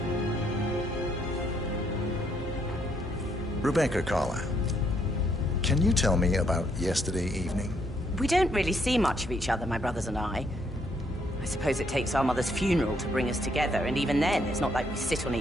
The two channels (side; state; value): both; normal; correlation 0.71